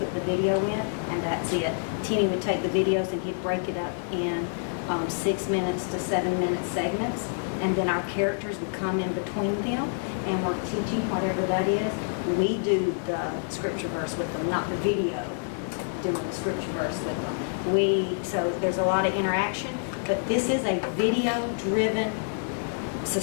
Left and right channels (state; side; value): silent; right; digital silence